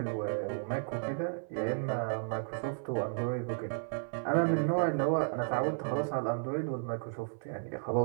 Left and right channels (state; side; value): silent; left; 56 dB below the other